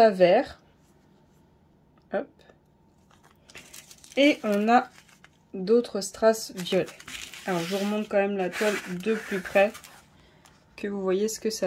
verts. Hop. Et on a d'autres strass violets. Alors, je vous remonte quand même la toile de plus près, que vous voyez ce que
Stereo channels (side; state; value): both; identical; correlation 1.00